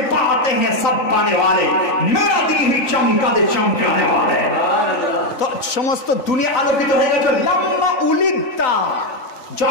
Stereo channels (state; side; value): late; right; 3.9 ms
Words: পাতে হ্যাঁ সব পানে वाले, মেরা দিল হি চমকা দে চমকানে वाले। তো সমস্ত দুনিয়া আলোকিত হয়ে গেছে। লাম্মা উলিদতা,